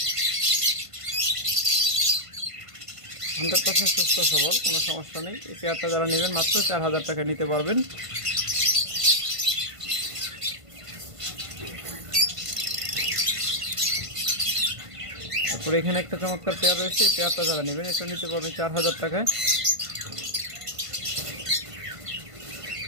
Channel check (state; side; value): late; left; 1.5 ms